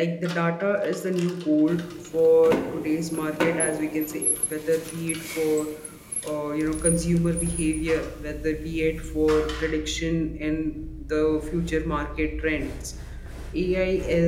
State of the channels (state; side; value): identical; both; correlation 1.00